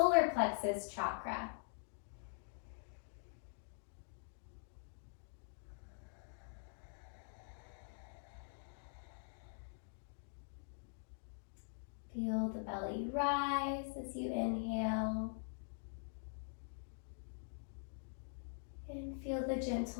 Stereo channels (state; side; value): silent; right; digital silence